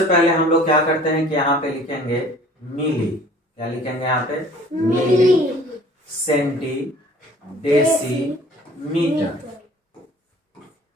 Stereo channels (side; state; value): both; normal; correlation 0.51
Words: पहले हम लोग क्या करते हैं कि यहाँ पे लिखेंगे मिली। क्या लिखेंगे यहाँ पे? मिली, सेंटी, डेसी, मीटर,